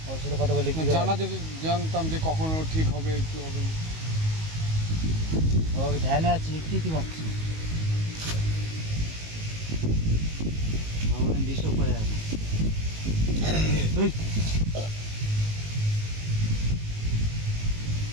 ওর সাথে কথা বললে কি জানা, যদি জানতাম যে কখনো ঠিক হবে কি হবে না। ও ধ্যানে আছে, একটু ভাবছি ভগবান ডিস্টার্ব করে আছে।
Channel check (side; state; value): left; late; 19 ms